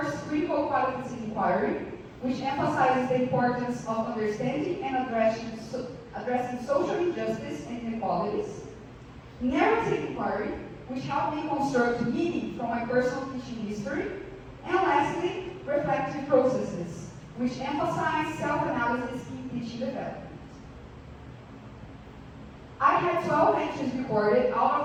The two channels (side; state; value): both; identical; correlation 1.00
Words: Critical Qualitative inquiry, which emphasizes the importance of understanding and addressing social injustice and inequalities. Narrative inquiry, which helped me construct meaning from my personal teaching history. And lastly, reflective processes, which emphasize self-analysis in teaching development. I had 12 entries recorded.